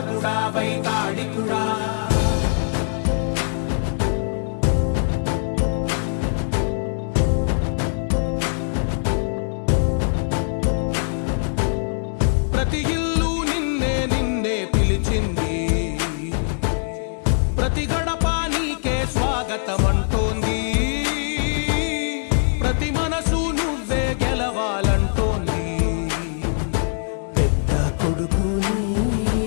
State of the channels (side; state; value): right; silent; digital silence